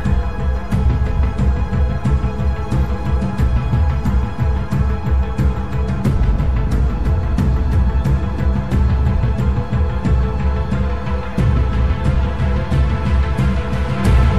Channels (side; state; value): both; identical; correlation 1.00